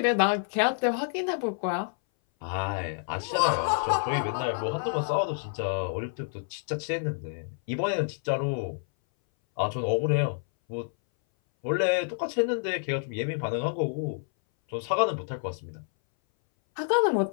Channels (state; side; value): silent; right; 59 dB below the other